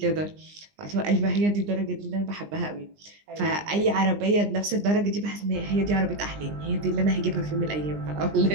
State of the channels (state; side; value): late; left; 20 ms